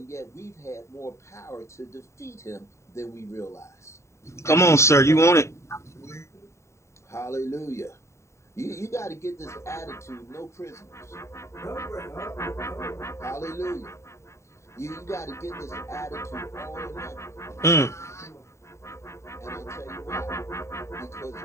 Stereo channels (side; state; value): right; late; 0.14 ms